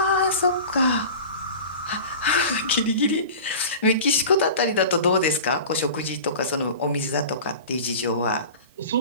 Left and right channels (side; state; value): both; inverted; correlation -0.36